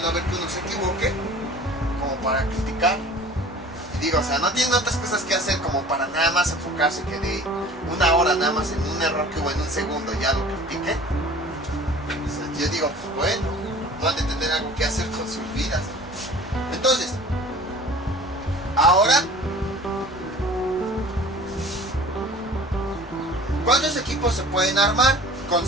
a ver que uno se equivoque como para criticar. Y digo, o sea, no tienen otras cosas que hacer como para nada más enfocarse que de 1 hora nada más en un error que hubo en 1 segundo ya lo critiquen. O sea, yo digo, pues bueno, no han de tener algo que hacer con sus vidas. Entonces, ahora, ¿cuántos equipos se pueden armar?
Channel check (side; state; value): both; normal; correlation 0.45